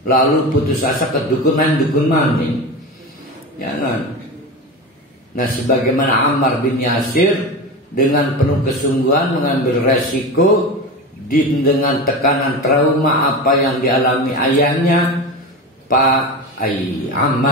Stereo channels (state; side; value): normal; both; correlation 0.25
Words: lalu putus asa ke dukun mani. Jangan. Nah, sebagaimana Ammar bin Yasir dengan penuh kesungguhan mengambil resiko dengan tekanan trauma apa yang dialami ayahnya Pak